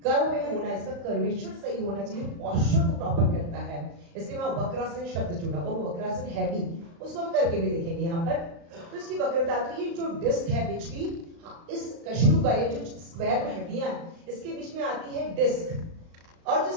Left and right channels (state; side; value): late; left; 35 ms